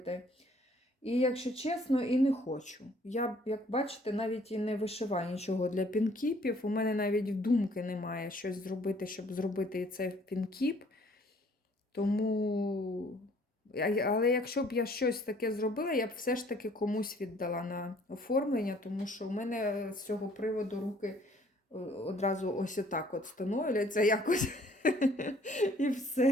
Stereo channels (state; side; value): normal; both; correlation 0.59